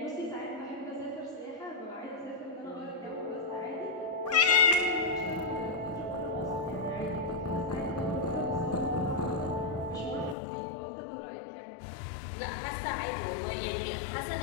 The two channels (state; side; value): drops out; right; at 10.4 s